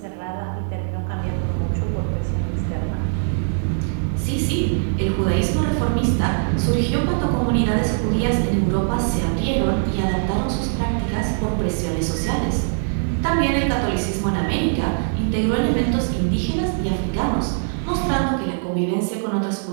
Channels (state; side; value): silent; left; 57 dB below the other